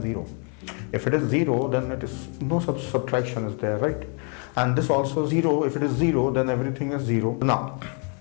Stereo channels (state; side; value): quieter; right; 39.6 dB